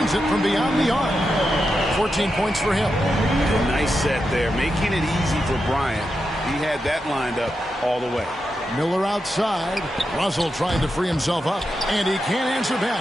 it from beyond the arc. 14 points for him. Nice set there, making it easy for Bryant. He had that lined up all the way. Miller outside. Russell trying to free himself up. And he can't answer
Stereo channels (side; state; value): both; normal; correlation 0.87